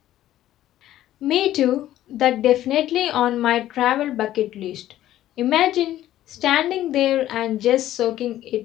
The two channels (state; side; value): quieter; right; 13.3 dB